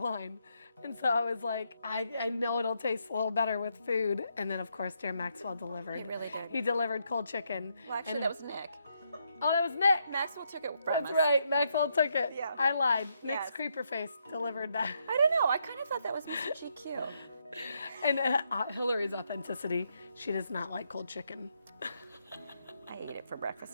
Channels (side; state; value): both; inverted; correlation -0.77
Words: And so I was like, I know it'll taste a little better with food. And then, of course, dear Maxwell delivered. He really did. He delivered cold chicken. Well, actually, that was Nick. Oh, that was Nick. Maxwell took it from That's us. right. Maxwell took it. Yeah. I lied. Nick's Yes. creeper face delivered that. I don't know. I kind of thought that was Mr. GQ. And Hilary's authenticity, she does not like cold chicken. I eat it for breakfast